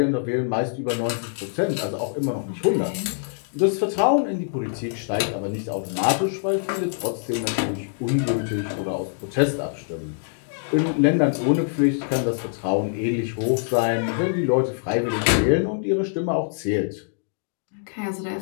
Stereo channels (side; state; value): right; silent; digital silence